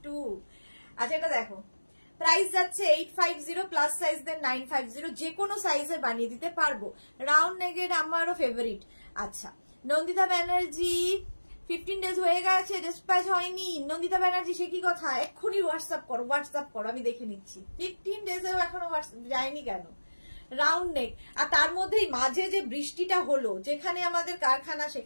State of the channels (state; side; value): inverted; both; correlation -1.00